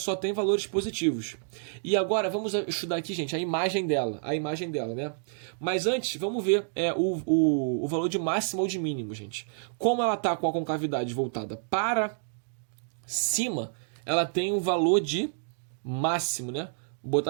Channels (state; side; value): silent; left; digital silence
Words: tem valores positivos. E agora, vamos estudar aqui, gente, a imagem dela. A imagem dela, né? Mas antes, vamos ver o valor de máximo ou de mínimo, gente. Como ela está com a concavidade voltada para cima, ela tem um valor de máximo, né? Vou